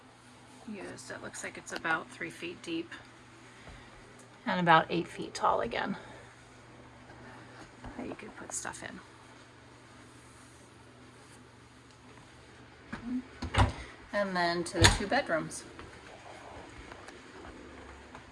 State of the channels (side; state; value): both; identical; correlation 1.00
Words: used. It looks like it's about 3 feet deep and about 8 feet tall again, that you could put stuff in. And then to the 2 bedrooms.